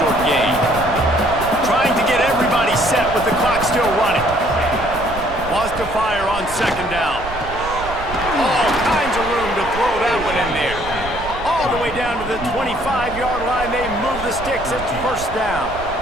gain. Trying to get everybody set with the clock still running. Wants to fire on second down. All kinds of room to throw that one in there. All the way down to the 25-yard line. They move the sticks. It's first down.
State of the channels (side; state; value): right; noise; rumble, 12 dB below the sound